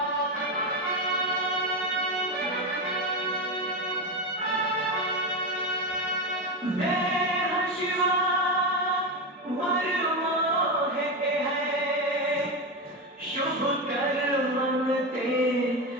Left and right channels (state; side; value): normal; both; correlation 0.15